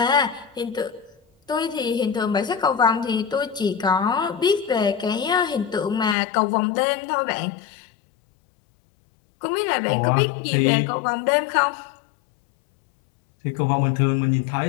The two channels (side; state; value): right; drops out; at 6.2 s